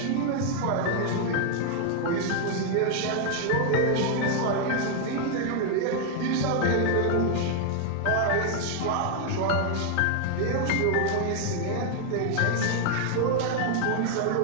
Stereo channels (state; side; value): different; both; correlation 0.00